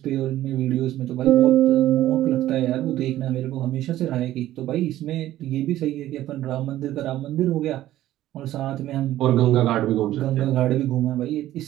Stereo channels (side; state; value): left; quieter; 14.0 dB